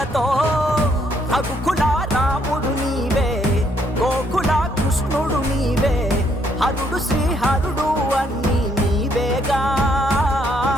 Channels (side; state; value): both; normal; correlation 0.70